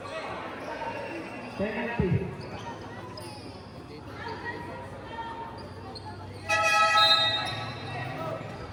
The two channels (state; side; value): identical; both; correlation 1.00